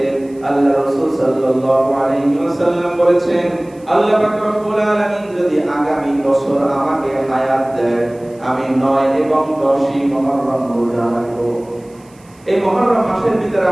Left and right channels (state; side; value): noise; right; hiss, 30 dB below the sound